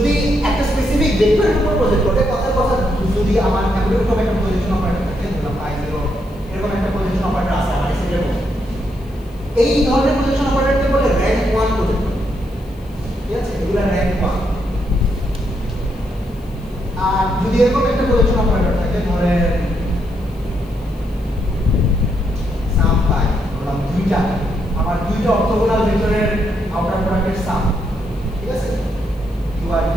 একটা স্পেসিফিক ভেক্টরের উপর প্রজেক্ট করে কথার কথা যদি আমার এরকম একটা প্রজেকশন অপারেটর থাকে ধরলাম পাই 0 এরকম একটা প্রজেকশন অপারেটর আছে আমার সেটের মধ্যে এই ধরনের প্রজেকশন অপারেটরকে বলে র‍্যাঙ্ক 1 প্রজেক্টর ঠিক আছে এগুলো র‍্যাঙ্ক 1 আর যদি এরকম একটা প্রজেকশন অপারেটর থাকে ধরেন সাম পাই ধরলাম দুইটা আমার দুইটা অর্থোগোনাল ভেক্টরের আউটার প্রোডাক্টের সাম ঠিক আছে বা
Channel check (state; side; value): noise; left; hiss, 30 dB below the sound